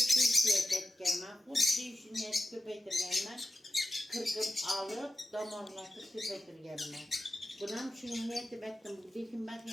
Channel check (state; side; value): normal; both; correlation 0.92